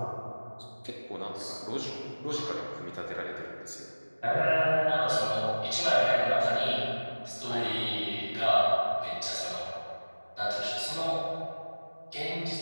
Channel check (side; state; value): both; inverted; correlation -1.00